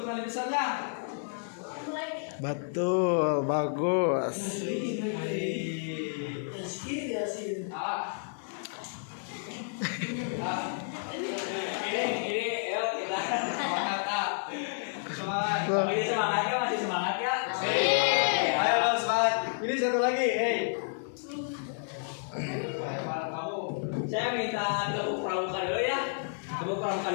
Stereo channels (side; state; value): right; silent; 55 dB below the other